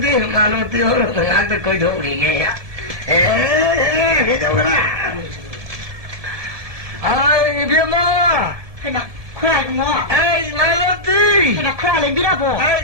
말로 뛰어오는데 나한테 거의 도우리게야 해줘라 아이 비마 해나 그래 뭐 아이 말로 뛰 해나 그래 랭비라고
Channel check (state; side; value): late; left; 1.7 ms